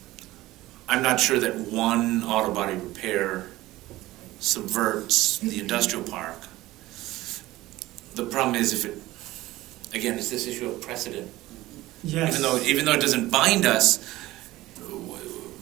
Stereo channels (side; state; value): left; quieter; 17.4 dB